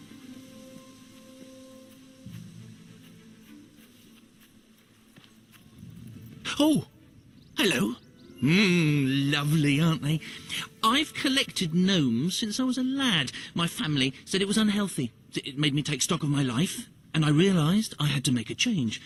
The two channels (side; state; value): both; identical; correlation 1.00